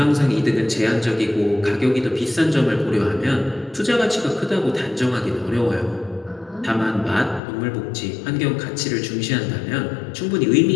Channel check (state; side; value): drops out; right; at 7.4 s